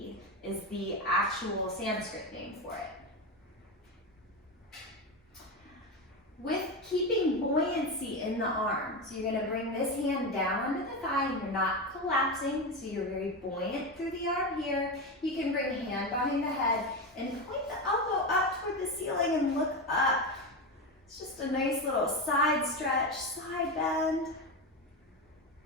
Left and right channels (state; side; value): normal; both; correlation 0.17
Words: is the actual Sanskrit name for it. With keeping buoyancy in the arms, you're going to bring this hand down under the thigh and you're not collapsing, so you're very buoyant through the arm here. You can bring a hand behind the head and point the elbow up toward the ceiling and look up. It's just a nice little side stretch, side bend.